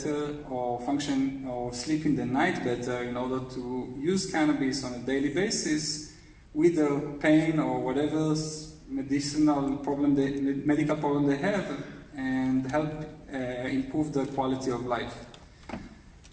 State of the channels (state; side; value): identical; both; correlation 1.00